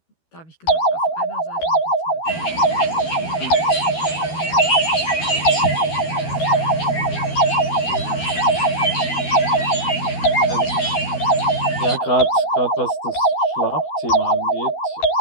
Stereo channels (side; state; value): right; late; 12 ms